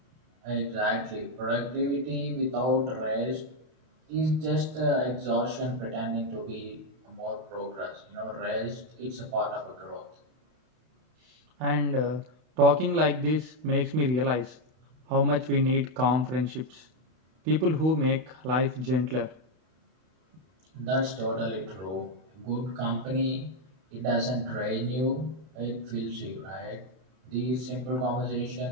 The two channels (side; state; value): left; late; 32 ms